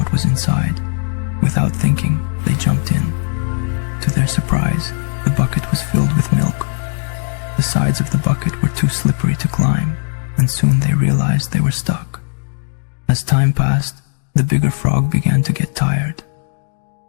was inside. Without thinking, they jumped in. To their surprise, the bucket was filled with milk. The sides of the bucket were too slippery to climb, and soon they realized they were stuck. As time passed, the bigger frog began to get tired.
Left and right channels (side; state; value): right; silent; digital silence